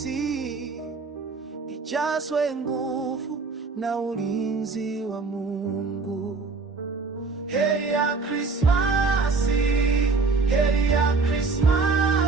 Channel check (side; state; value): left; quieter; 4.2 dB